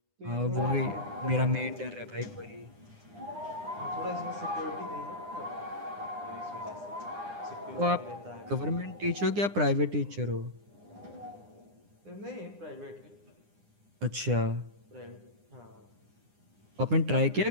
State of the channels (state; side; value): late; left; 9.8 ms